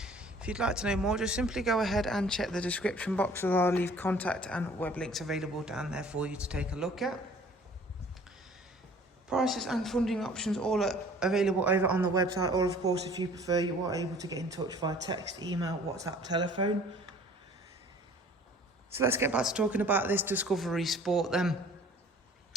If you'd like to know more, just simply go ahead and check the description box, where I'll leave contact and web links available down there for you to take a look at. Prices and funding options all are available over on the website, or of course if you prefer, you are able to get in touch via text, email, WhatsApp, telephone. So let's get back to talking about this Discovery Sport then.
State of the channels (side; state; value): both; normal; correlation 0.51